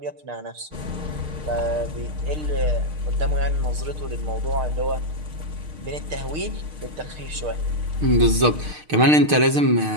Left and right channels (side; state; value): left; late; 6.6 ms